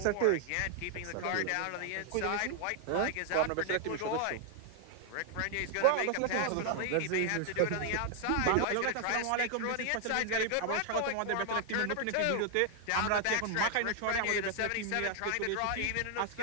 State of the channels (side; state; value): both; different; correlation 0.00